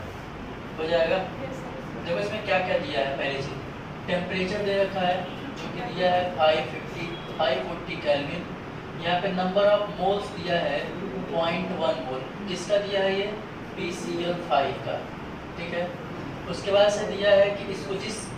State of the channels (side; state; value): both; identical; correlation 1.00